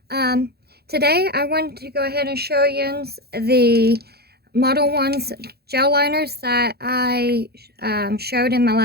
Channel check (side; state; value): left; late; 0.46 ms